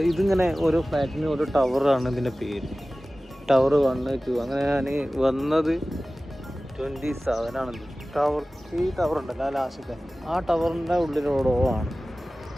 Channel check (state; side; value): normal; both; correlation 0.97